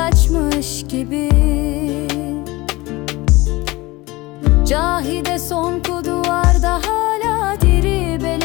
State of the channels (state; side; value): quieter; right; 21.3 dB